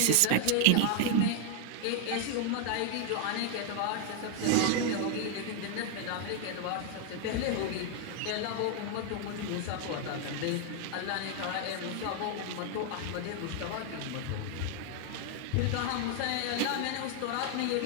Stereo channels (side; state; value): both; different; correlation 0.00